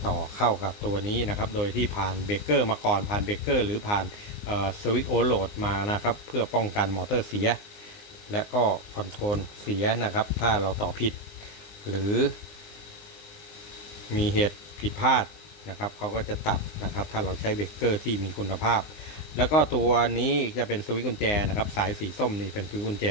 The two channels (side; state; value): right; late; 19 ms